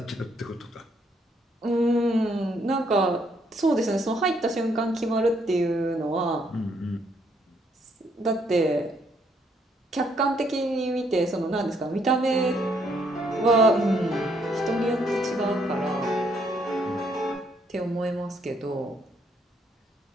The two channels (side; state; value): both; normal; correlation 0.71